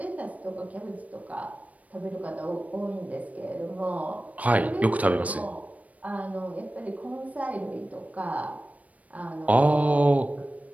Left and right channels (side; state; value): left; late; 0.069 ms